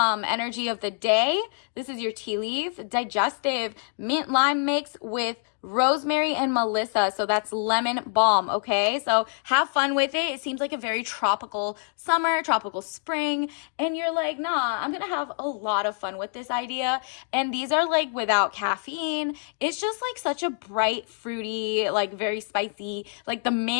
of the day. This is your tea leaf, digestive, mint lime mix with rosemary and melissa. So that's lemon balm, okay? So have fun with it. It seems like a very tropical summer, tropical spring. And you're like, nah, I'm going to have a lot of fun with this idea. And these are like without caffeine. It's just like such a bright, fruity, like very spicy, like the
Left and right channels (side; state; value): right; silent; 61 dB below the other